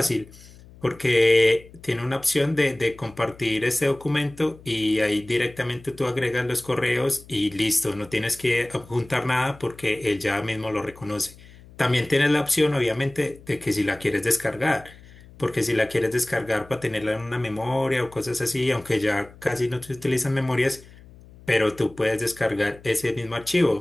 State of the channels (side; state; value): left; noise; hum, 22 dB below the sound